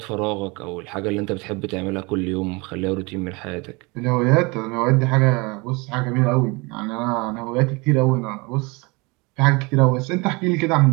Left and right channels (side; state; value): left; quieter; 26.8 dB